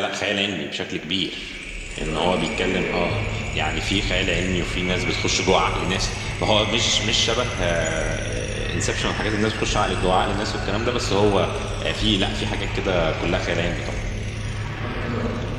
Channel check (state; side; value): identical; both; correlation 1.00